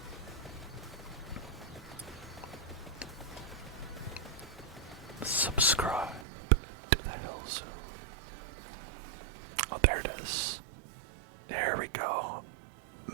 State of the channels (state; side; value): drops out; left; at 6.2 s